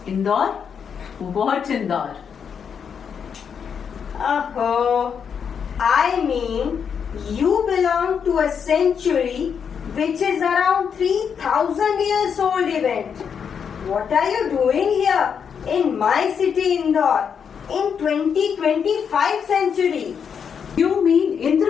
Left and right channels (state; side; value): quieter; right; 7.1 dB